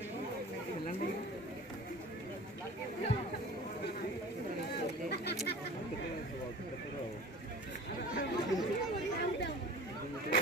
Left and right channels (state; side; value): normal; both; correlation 0.40